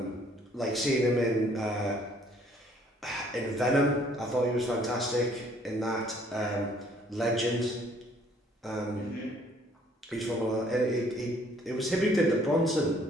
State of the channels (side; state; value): both; normal; correlation 0.61